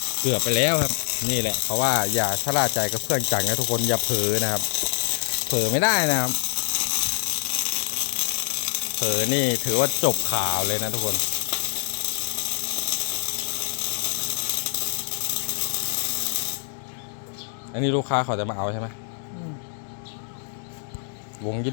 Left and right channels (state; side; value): silent; right; digital silence